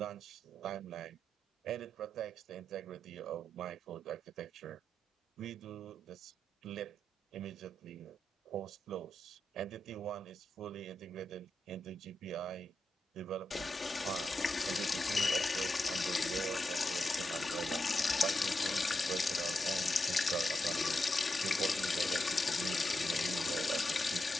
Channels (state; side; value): normal; both; correlation 0.87